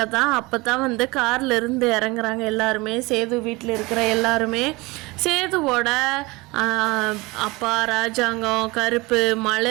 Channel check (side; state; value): left; quieter; 23.3 dB